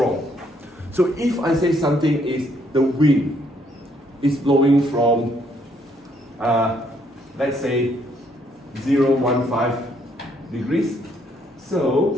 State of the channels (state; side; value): normal; both; correlation 0.69